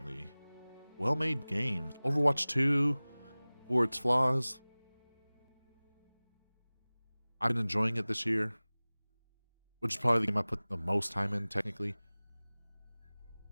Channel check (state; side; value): inverted; both; correlation -1.00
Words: well-made games. Overwatch 2, for its flaws, I've been enjoying it this year, which is probably the game I put the most time in, technically.